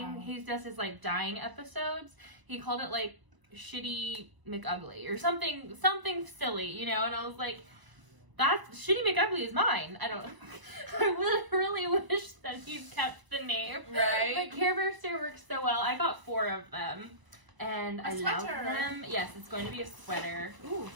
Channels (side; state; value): left; late; 1.0 ms